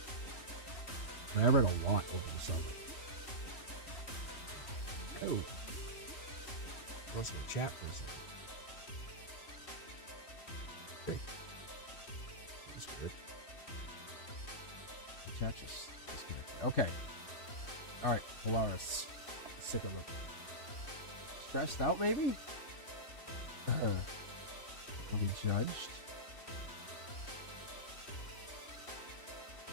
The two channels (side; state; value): right; late; 3.0 ms